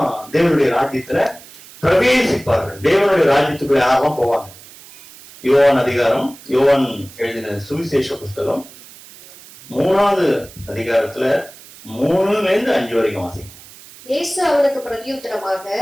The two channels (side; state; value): right; noise; hiss, 20 dB below the sound